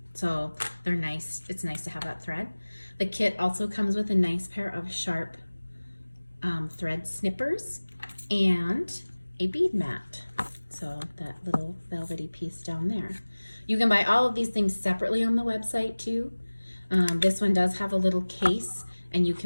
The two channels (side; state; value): both; inverted; correlation -1.00